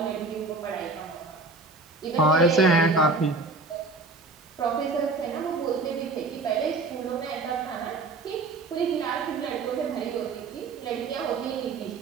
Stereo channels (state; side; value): quieter; left; 3.5 dB